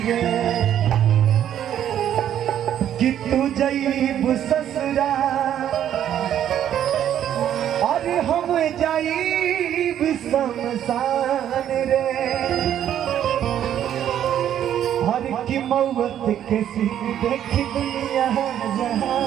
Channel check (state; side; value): quieter; left; 10.5 dB